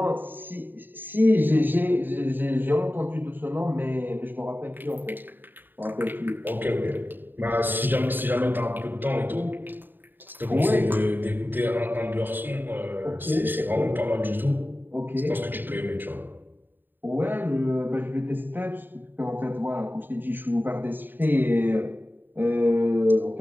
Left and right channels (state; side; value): late; left; 0.093 ms